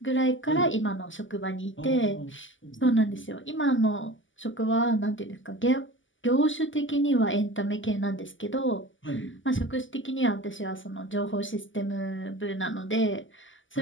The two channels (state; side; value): late; right; 0.56 ms